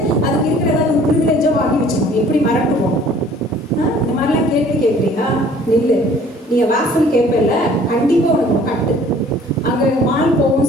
அதுக்கு இருக்கிற ஏதாவது ஒரு ப்ரிவிலேஜாக வாங்கி வச்சுக்கோங்க. எப்படி மறட்டுவோம்? இந்த மாதிரிலாம் கேள்வி கேட்குறீங்களா? நில்லு. நீங்கள் வாசல் கேட்பல, கண்டிப்பாக உனக்கு கட்டு. அங்கே மால்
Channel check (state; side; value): normal; both; correlation 0.53